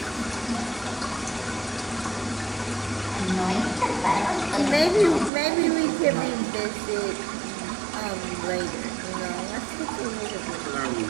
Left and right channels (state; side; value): drops out; left; at 5.3 s